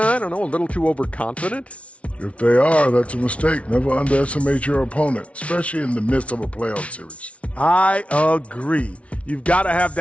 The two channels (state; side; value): late; right; 0.063 ms